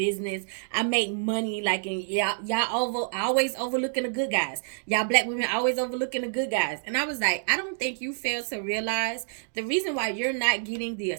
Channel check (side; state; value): left; silent; digital silence